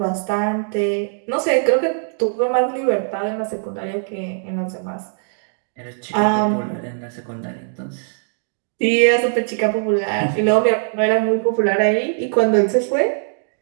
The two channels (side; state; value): left; silent; digital silence